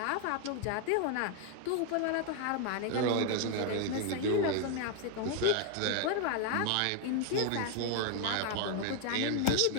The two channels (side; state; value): both; different; correlation 0.00